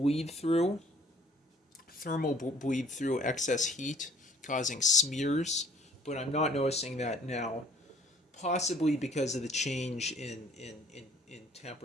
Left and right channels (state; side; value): normal; both; correlation 0.56